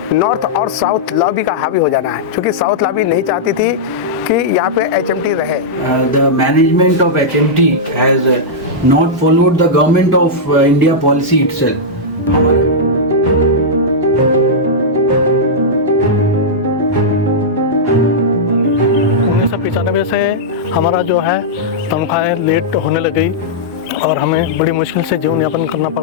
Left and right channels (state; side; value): normal; both; correlation -0.09